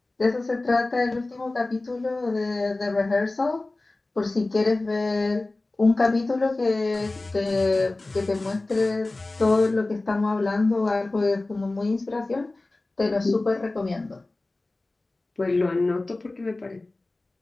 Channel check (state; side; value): quieter; right; 3.0 dB